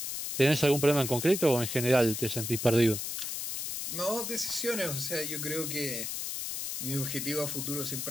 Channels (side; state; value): left; noise; hiss, 4 dB below the sound